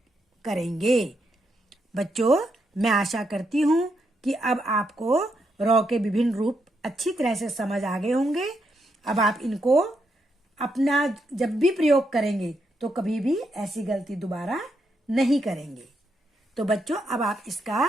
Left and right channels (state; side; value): normal; both; correlation 0.80